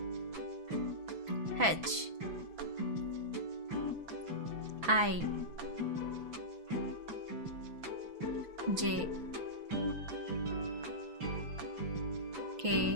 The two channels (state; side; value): late; left; 6.1 ms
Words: H I J